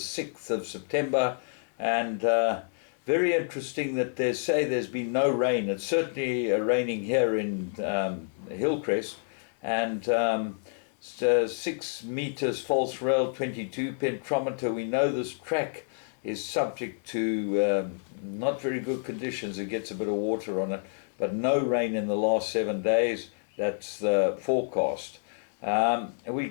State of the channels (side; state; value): right; silent; digital silence